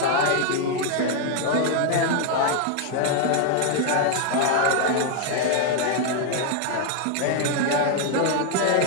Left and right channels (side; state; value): both; different; correlation 0.00